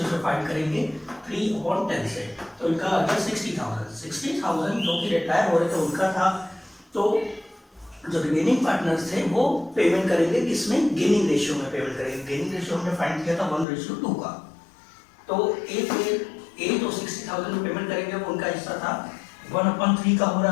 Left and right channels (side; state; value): right; drops out; at 13.7 s